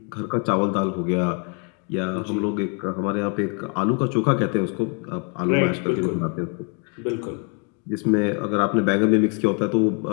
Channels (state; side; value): quieter; right; 38.2 dB